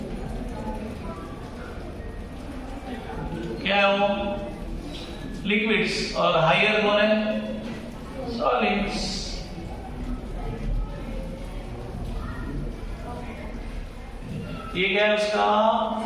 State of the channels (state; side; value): identical; both; correlation 1.00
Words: क्या है वो? लिक्विड्स। और हायर कौन है? सॉलिड्स। ये क्या है उसका?